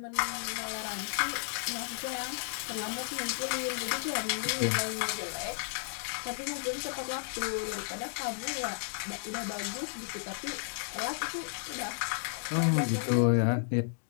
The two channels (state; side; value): silent; right; digital silence